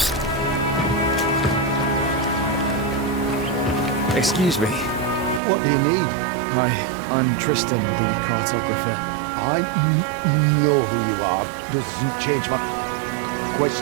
Excuse me. What do you need? Hi, I'm Tristan, the cartographer. I know who you are. Doesn't change my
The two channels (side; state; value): left; drops out; at 5.4 s